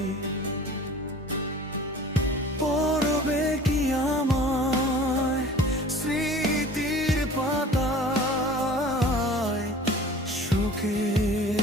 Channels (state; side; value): normal; both; correlation 0.44